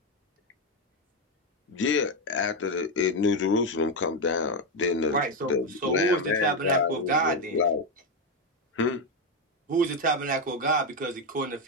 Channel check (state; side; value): normal; both; correlation 0.08